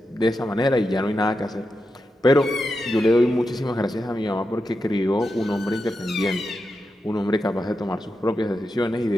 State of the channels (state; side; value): normal; both; correlation 0.88